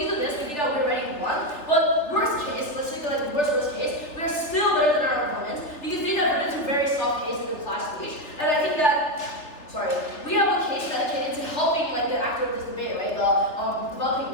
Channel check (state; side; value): late; right; 3.3 ms